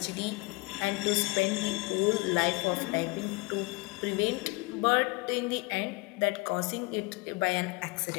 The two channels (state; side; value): quieter; right; 25.8 dB